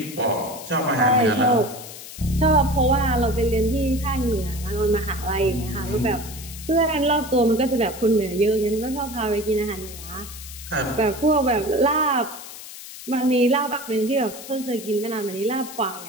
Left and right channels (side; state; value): left; noise; hiss, 13 dB below the sound